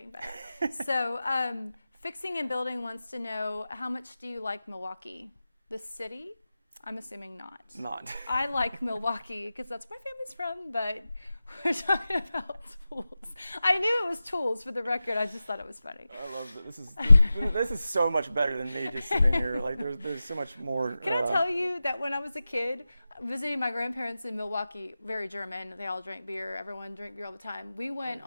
better. So Fixing and Building wants to know, how much do you like Milwaukee? The city? I'm assuming not. Not. I like Milwaukee because that's where my family's from, but we're talking about tools. I knew it was tools, for the record. I just thought it was funny. I love it. This is so much better than me just sitting here. Like there's so much more. Can I tell you that when I was a kid, visiting my grandparents in Milwaukee, very German, they all drank beer, everyone drank beer all the time. We went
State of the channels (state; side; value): inverted; both; correlation -0.94